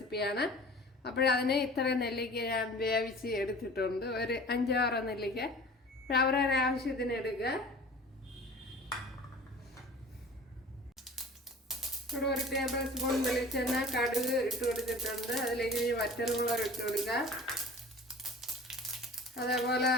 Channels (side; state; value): both; normal; correlation 0.42